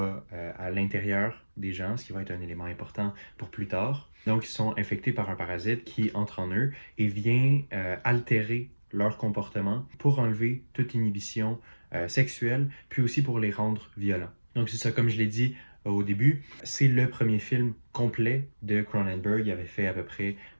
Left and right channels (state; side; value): inverted; both; correlation -1.00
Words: à l'intérieur des gens, ce qui va être un élément important pour plus tard. Donc, ils sont infectés par un parasite qui entre en eux et vient altérer leur comportement pour enlever toute inhibition sexuelle, puis aussi pour les rendre violents. Donc, c'est ça, comme je l'ai dit, au début. C'est le premier film complet de Cronenberg. Il avait fait à peu près